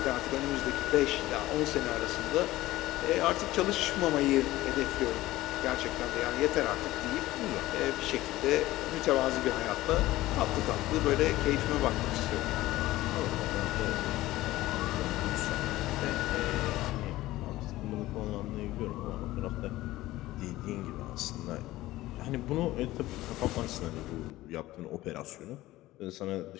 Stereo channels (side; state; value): right; quieter; 16.9 dB